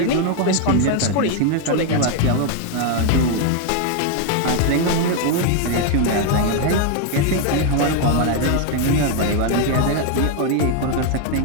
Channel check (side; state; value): both; different; correlation 0.01